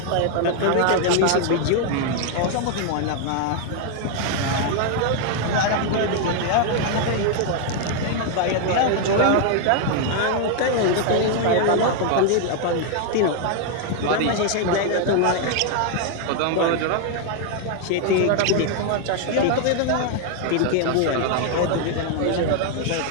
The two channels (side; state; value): both; different; correlation 0.00